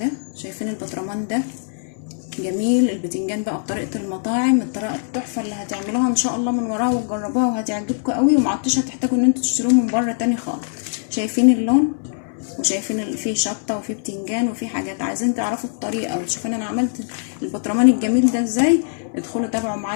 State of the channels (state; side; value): silent; right; 64 dB below the other